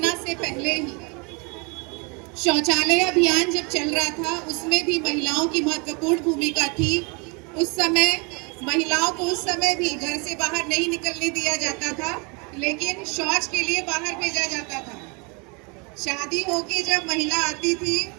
से पहले ही शौचालय अभियान जब चल रहा था, उसमें भी महिलाओं की महत्वपूर्ण भूमिका थी। उस समय महिलाओं को उस समय भी घर से बाहर नहीं निकलने दिया जाता था, लेकिन शौच के लिए बाहर भेजा जाता था। शादी होके जब महिला आती थी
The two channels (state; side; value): quieter; left; 31.5 dB